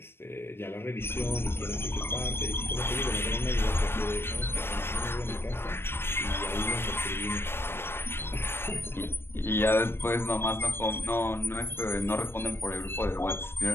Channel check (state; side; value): late; right; 0.11 ms